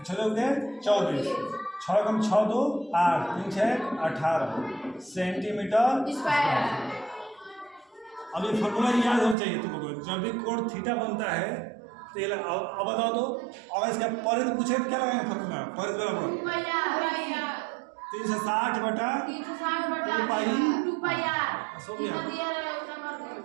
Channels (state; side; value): drops out; left; at 9.3 s